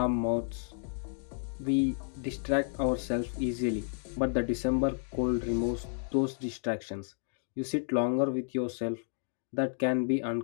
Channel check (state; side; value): silent; right; digital silence